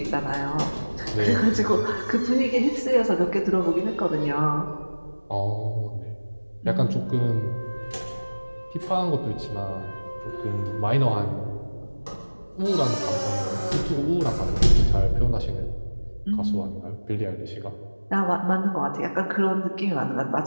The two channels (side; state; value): both; inverted; correlation -1.00